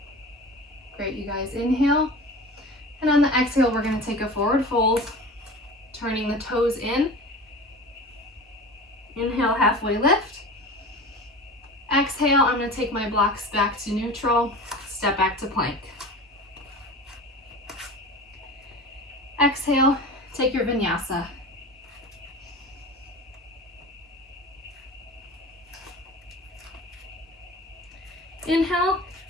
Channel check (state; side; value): normal; both; correlation 0.35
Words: Great, you guys. Inhale. And on the exhale, we're going to take a forward fold, turning the toes in. Inhale, halfway lift. Exhale, I'm going to take my blocks back to neutral, step back to plank. Exhale, take your vinyasa. Inhale,